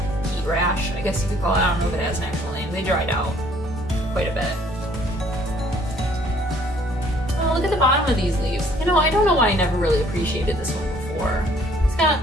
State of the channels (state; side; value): normal; both; correlation 0.60